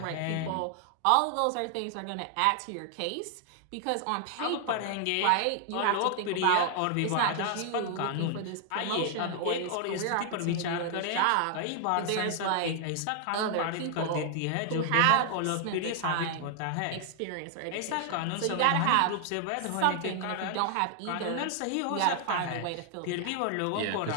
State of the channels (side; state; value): both; different; correlation 0.00